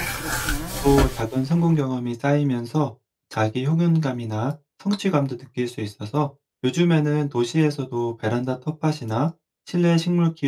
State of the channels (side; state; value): both; identical; correlation 1.00